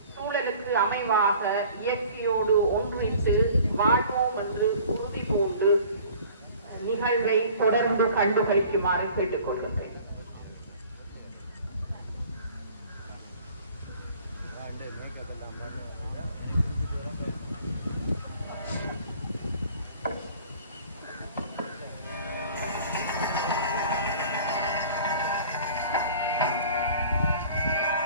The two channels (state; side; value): inverted; both; correlation -0.48